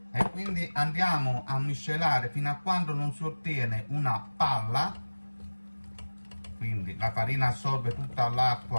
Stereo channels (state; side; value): inverted; both; correlation -1.00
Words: e quindi andiamo a miscelare fino a quando non si ottiene una palla, quindi la farina assorbe tutta